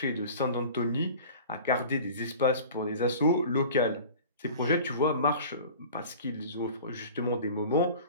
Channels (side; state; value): both; inverted; correlation -0.41